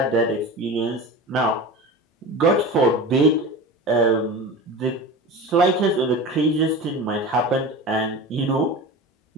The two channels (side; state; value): both; normal; correlation 0.31